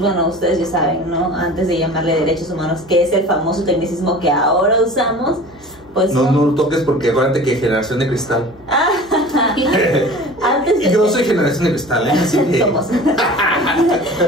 ustedes ya saben, ¿no? Antes de llamarle derechos humanos, que es el famoso tecnicismo que ahora usamos, pues... No lo toques porque acuérdate que generación de cristal. Antes de y yo soy generación de cristal, ¿eh? Así que... Somos.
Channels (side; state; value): left; noise; hum, 26 dB below the sound